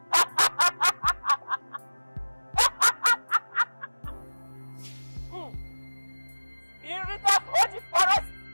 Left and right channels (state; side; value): inverted; both; correlation -1.00